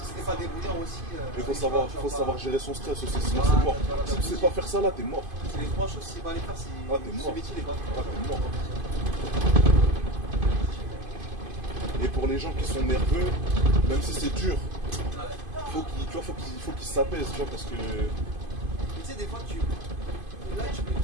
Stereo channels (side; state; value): left; late; 2.5 ms